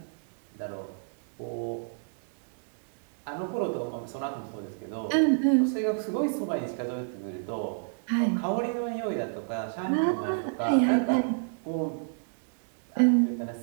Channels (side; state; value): left; silent; digital silence